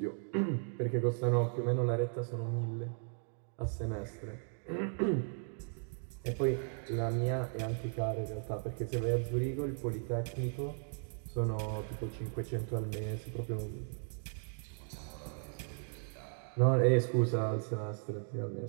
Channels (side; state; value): left; silent; 54 dB below the other